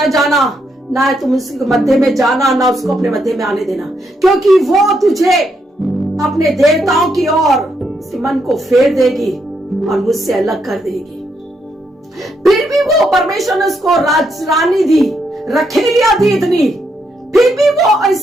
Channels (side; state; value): both; normal; correlation 0.78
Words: जाना, ना तुम उसके मध्य में जाना, ना उसको अपने मध्य में आने देना, क्योंकि वो तुझे अपने देवताओं की ओर उसके मन को फेर देगी और मुझसे अलग कर देगी। फिर भी वो परमेश्वर ने उसको रानी दी, रखेलियां दी इतनी, फिर भी वो